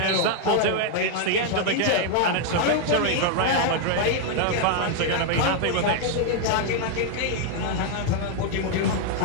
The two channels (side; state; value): both; different; correlation 0.00